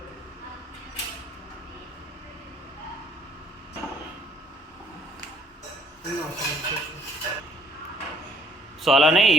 సో అలానే ఈ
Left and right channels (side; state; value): both; normal; correlation 0.63